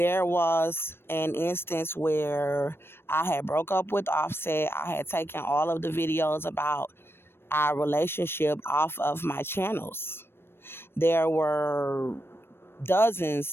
was an instance where I had broke up with Offset. I had taken all of the videos about our relationship off of my channels. There were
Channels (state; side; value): late; right; 0.11 ms